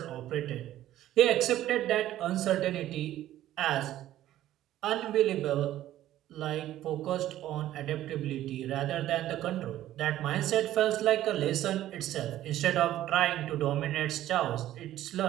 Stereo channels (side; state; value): left; quieter; 13.4 dB